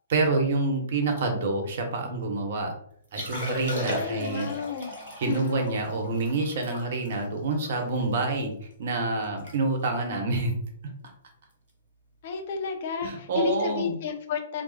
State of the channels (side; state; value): both; inverted; correlation -0.44